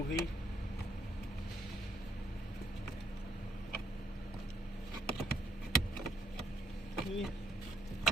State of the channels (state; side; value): normal; both; correlation 0.68